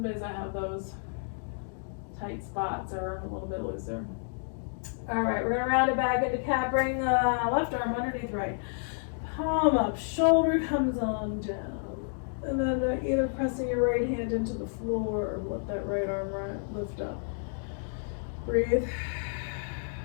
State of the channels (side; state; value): right; silent; digital silence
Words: days I have those tight spots or a little bit looser. All right, we're gonna round it back into cat. Bring the left arm underneath right. Palm up, shoulder comes on down. And then either pressing your right hand into the floor or let that right arm lift up. Breathe.